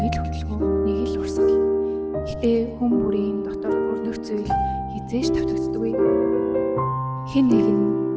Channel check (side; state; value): both; identical; correlation 1.00